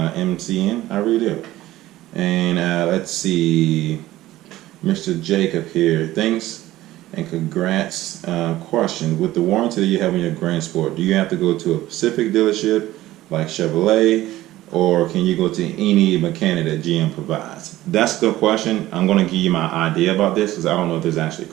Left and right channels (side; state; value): left; quieter; 15.8 dB